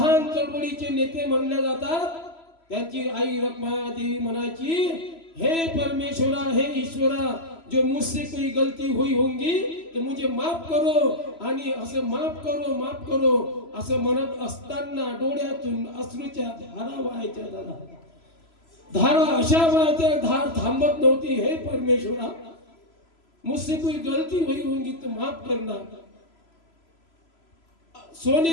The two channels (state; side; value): late; right; 3.0 ms